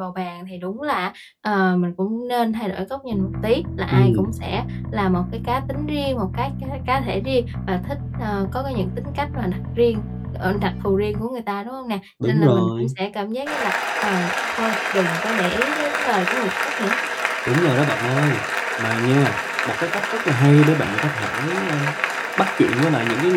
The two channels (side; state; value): both; identical; correlation 1.00